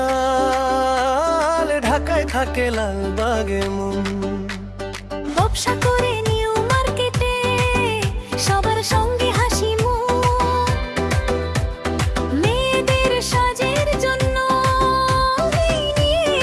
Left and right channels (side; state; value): both; identical; correlation 1.00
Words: ঢাকায় থাকে লালবাগে মন। ব্যবসা করে নিউ মার্কেটে সবার সঙ্গে হাসি মুখ, মেয়েদের সাজের জন্য নিয়ে